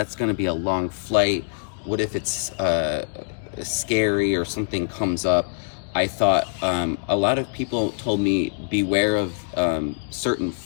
to be a long flight. What if it's scary or something comes up? I thought a lot of people told me beware of certain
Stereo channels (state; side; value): silent; right; digital silence